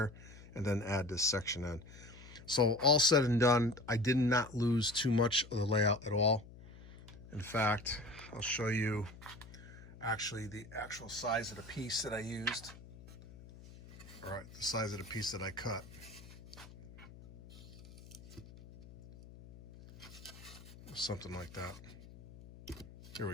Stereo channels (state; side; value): noise; left; hum, 18 dB below the sound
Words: and then add this section in. So all said and done, I did not lose too much of the layout at all. In fact, I'll show you actually the actual size of the piece that I used. All right, the size of the piece that I cut. Something like that. Here